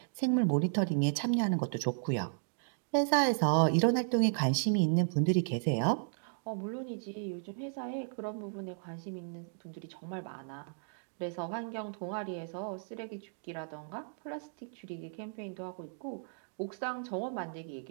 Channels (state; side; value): silent; left; digital silence